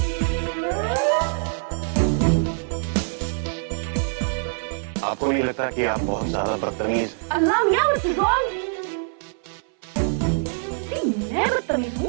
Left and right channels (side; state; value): left; silent; 58 dB below the other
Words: आपको नहीं लगता कि आप बहुत ज्यादा बदतमीज? अल्लाह मियां, what's wrong? मैं बदतमीज